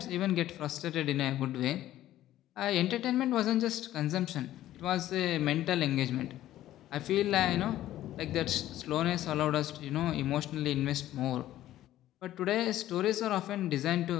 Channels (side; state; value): right; quieter; 13.7 dB